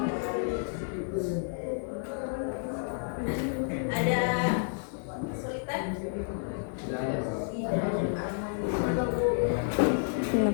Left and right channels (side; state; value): right; silent; digital silence